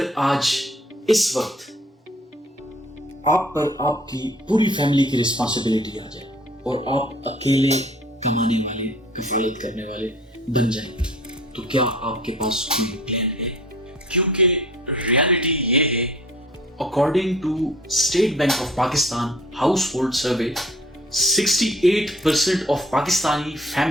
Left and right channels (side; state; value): both; normal; correlation 0.51